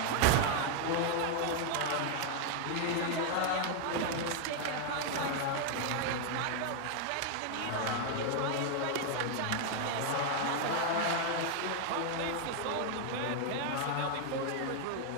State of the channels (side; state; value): both; different; correlation 0.00